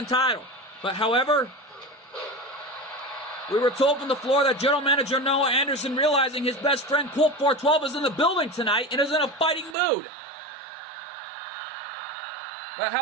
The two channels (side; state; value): left; drops out; at 9.8 s